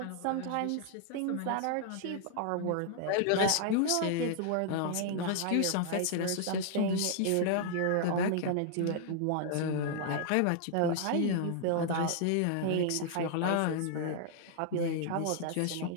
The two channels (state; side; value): different; both; correlation 0.00